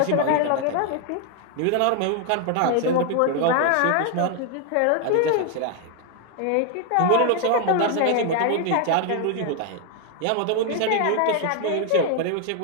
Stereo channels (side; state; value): both; different; correlation 0.00